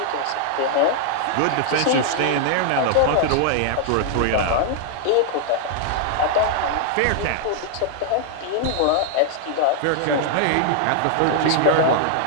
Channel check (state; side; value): different; both; correlation 0.00